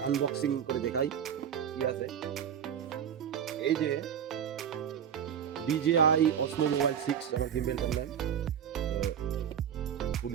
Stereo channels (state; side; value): quieter; left; 8.5 dB